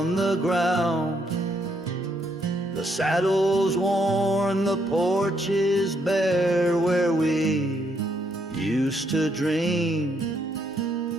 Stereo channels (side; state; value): both; normal; correlation 0.74